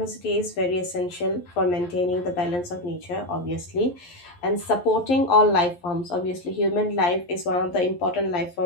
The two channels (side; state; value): right; late; 11 ms